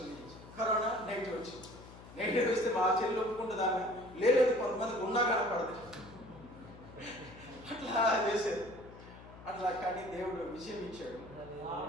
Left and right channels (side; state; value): left; noise; hum, 17 dB below the sound